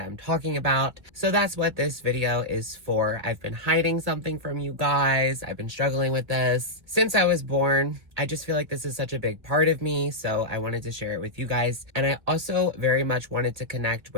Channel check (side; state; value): left; late; 2.0 ms